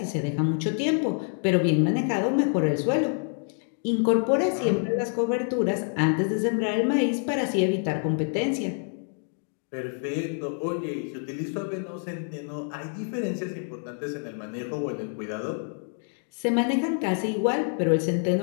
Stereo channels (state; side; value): silent; right; 56 dB below the other